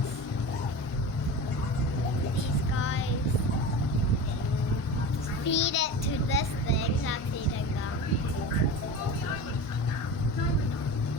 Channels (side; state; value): right; late; 1.5 ms